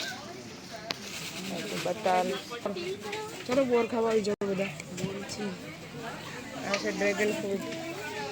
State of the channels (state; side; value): identical; both; correlation 1.00